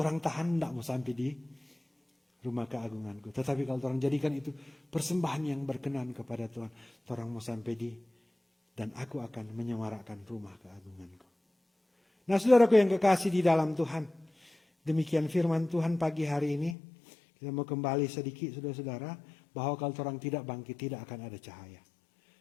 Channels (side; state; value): right; drops out; at 16.8 s